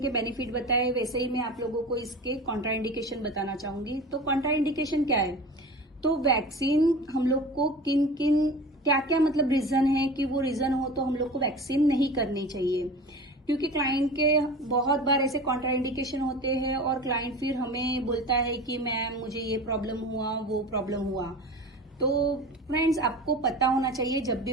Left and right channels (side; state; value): both; normal; correlation 0.35